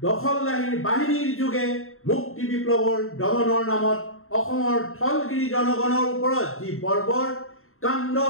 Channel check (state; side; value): late; right; 0.61 ms